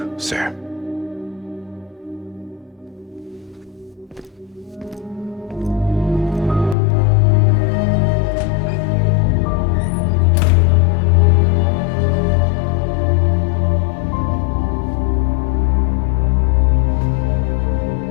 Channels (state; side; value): drops out; right; at 6.8 s